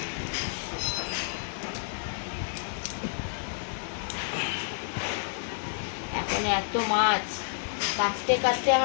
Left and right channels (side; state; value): right; silent; digital silence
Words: এখন এত মাছ কাটতে কাটতে